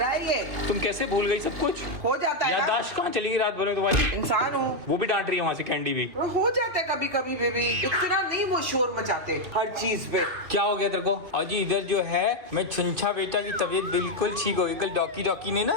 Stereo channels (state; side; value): late; left; 2.5 ms